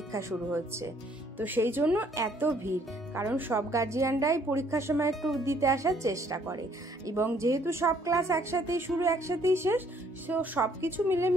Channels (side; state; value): both; normal; correlation 0.64